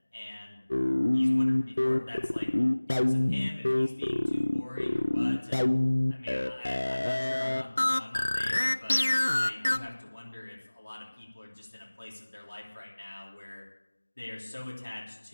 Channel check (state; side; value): inverted; both; correlation -1.00